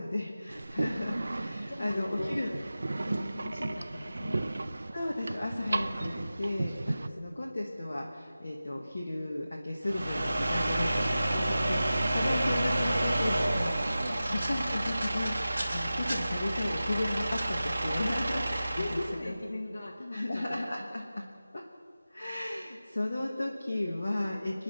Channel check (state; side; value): inverted; both; correlation -0.95